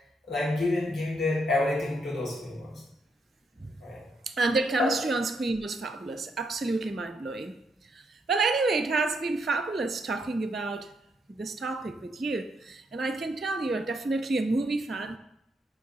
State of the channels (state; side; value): normal; both; correlation 0.77